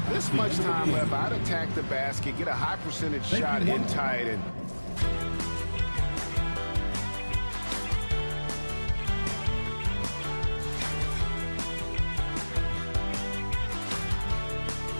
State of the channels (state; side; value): inverted; both; correlation -1.00